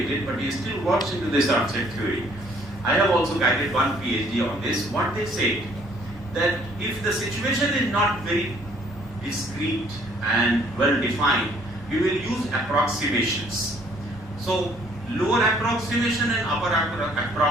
but he still works into this rough set theory. I have also guided one PhD on this. What they say, that if the situation is not very discrete and well defined, we will use approximations. So lower approximation and upper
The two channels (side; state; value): both; normal; correlation 0.61